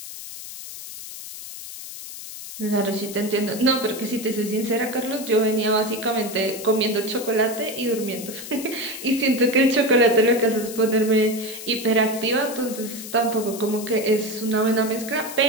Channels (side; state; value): left; noise; hiss, 11 dB below the sound